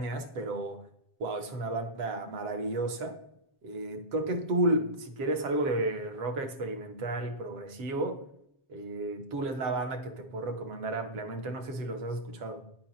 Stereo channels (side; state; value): left; late; 7.4 ms